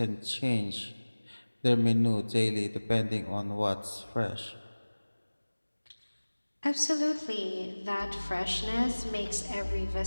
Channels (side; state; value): both; inverted; correlation -1.00